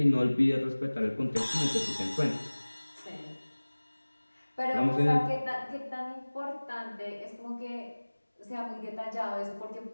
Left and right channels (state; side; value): inverted; both; correlation -1.00